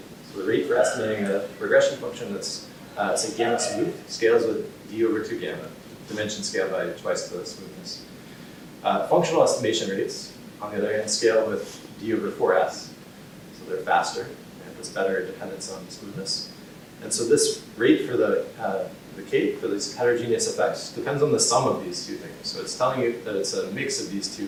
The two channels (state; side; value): identical; both; correlation 1.00